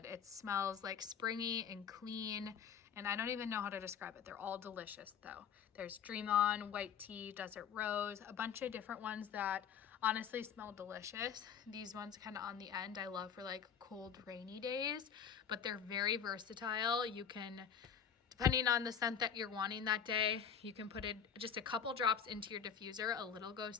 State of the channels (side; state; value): right; quieter; 7.7 dB